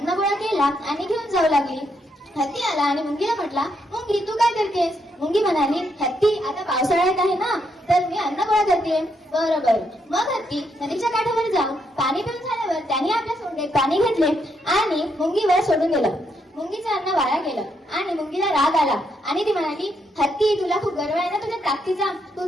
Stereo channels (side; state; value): both; normal; correlation 0.77